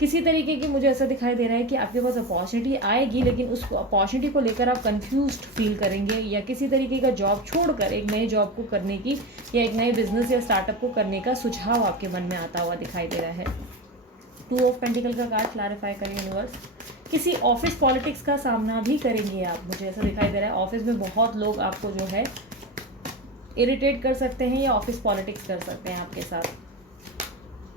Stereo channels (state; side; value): normal; both; correlation 0.24